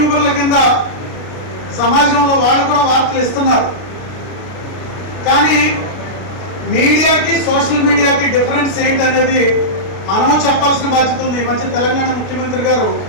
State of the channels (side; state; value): right; late; 33 ms